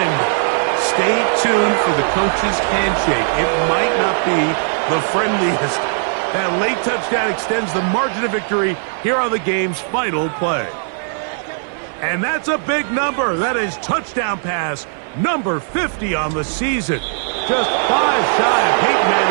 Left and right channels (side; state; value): left; silent; 58 dB below the other